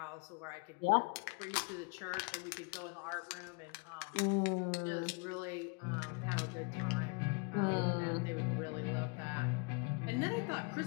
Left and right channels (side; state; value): right; quieter; 32.8 dB